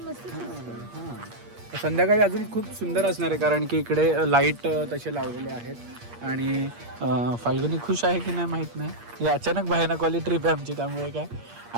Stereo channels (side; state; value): left; late; 8.5 ms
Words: मस्त हां. संध्याकाळी अजून खूप सुंदर असणार आहे कारण की इकडे लाईट तसे लावलेले आहेत. आणि फाल्गुनी खुश आहे की नाही माहीत नाही. ही अचानक भयानकवाली ट्रिप आहे आमची त्यामुळे काय.